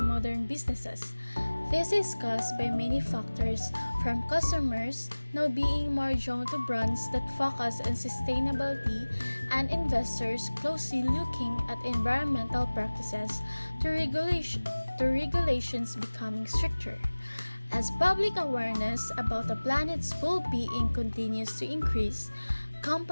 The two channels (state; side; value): inverted; both; correlation -1.00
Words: businesses. This is caused by many factors, from customers now being more drawn to brands that focus on sustainability and investors closely looking at environmental practices to regulations becoming stricter. As public awareness about the planet's well-being continues to increase,